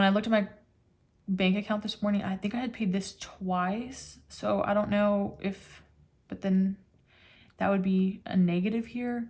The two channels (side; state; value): both; identical; correlation 1.00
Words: I looked at my bank account this morning, I think I had paid this twice. So I don't know if, but then that would be a negative here.